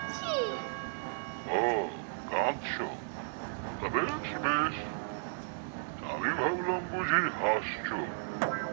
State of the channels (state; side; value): silent; left; digital silence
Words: ও, কাঁদছো? তা বেশ বেশ, আমি ভাবলাম বুঝি হাসছো।